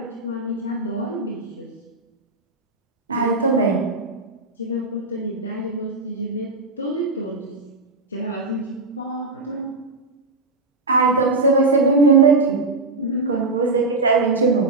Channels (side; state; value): left; quieter; 3.4 dB